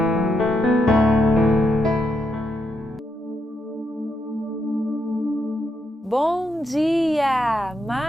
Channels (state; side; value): normal; both; correlation 0.80